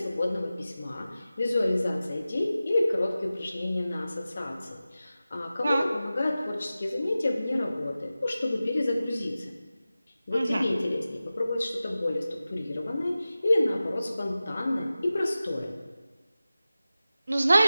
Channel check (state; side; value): inverted; both; correlation -0.95